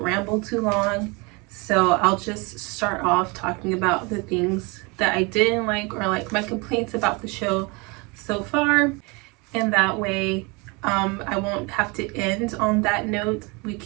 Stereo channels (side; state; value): left; quieter; 28.0 dB